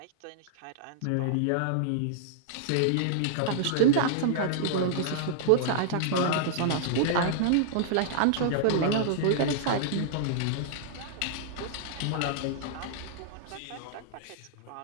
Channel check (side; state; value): both; different; correlation -0.01